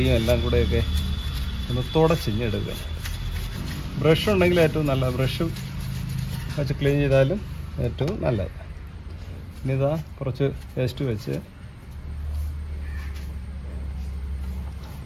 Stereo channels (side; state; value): both; identical; correlation 1.00